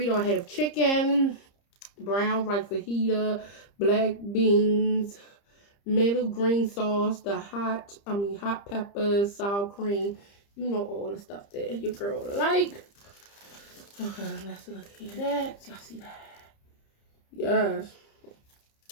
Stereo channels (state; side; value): late; right; 30 ms